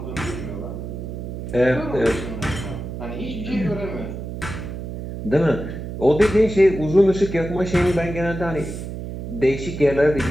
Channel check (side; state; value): right; noise; hum, 7 dB below the sound